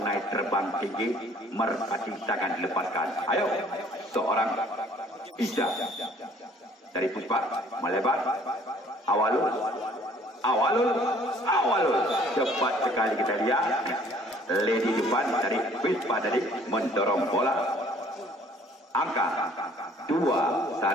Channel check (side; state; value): both; normal; correlation 0.57